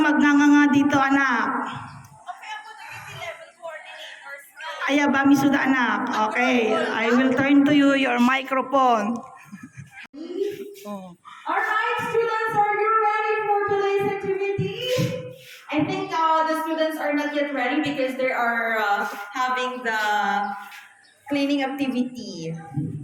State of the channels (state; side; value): identical; both; correlation 1.00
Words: magnanganga dito, anak. Aya ba, misuda, anak? Okay, I will turn to you your microphone. Alright, students, are you ready for today's activity? I think the students are not yet ready because they are having the cleaning activity.